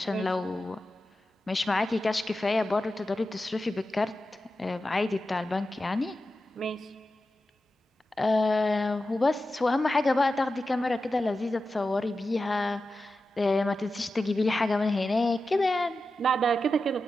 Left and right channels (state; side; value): normal; both; correlation 0.92